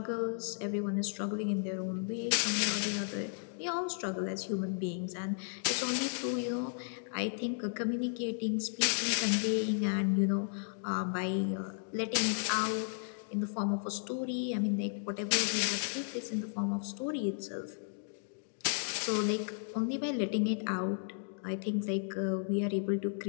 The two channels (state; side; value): silent; right; digital silence